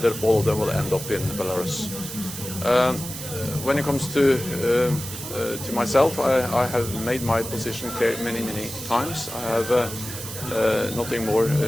all of them will end up in Belarus. When it comes to myself, I have made my position clear many times. I have nothing more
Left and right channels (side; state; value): right; noise; hiss, 9 dB below the sound